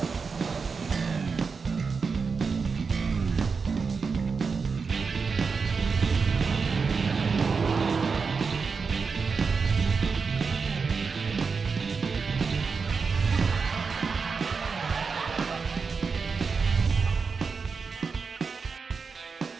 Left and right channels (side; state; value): left; quieter; 5.1 dB